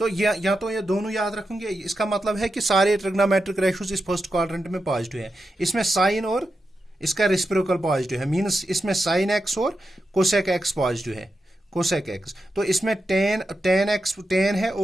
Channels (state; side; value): normal; both; correlation 0.89